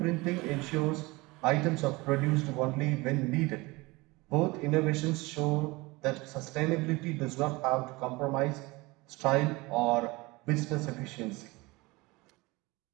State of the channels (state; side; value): quieter; left; 23.1 dB